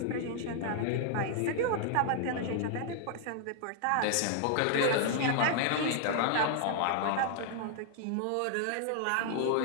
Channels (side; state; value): both; different; correlation 0.00